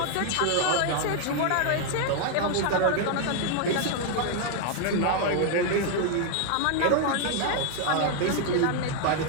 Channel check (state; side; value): different; both; correlation 0.00